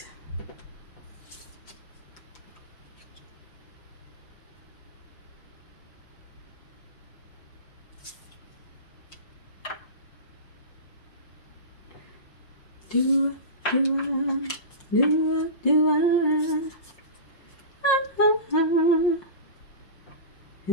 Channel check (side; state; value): right; late; 5.5 ms